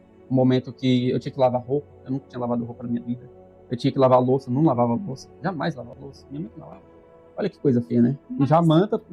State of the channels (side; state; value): both; identical; correlation 1.00